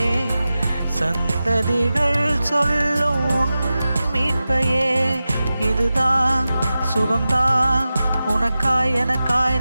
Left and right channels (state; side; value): inverted; both; correlation -0.94